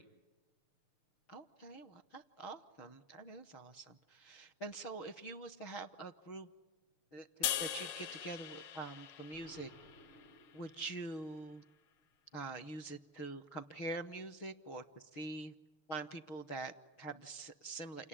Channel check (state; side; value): late; right; 6.6 ms